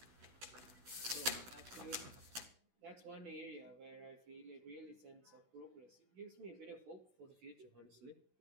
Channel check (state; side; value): late; left; 16 ms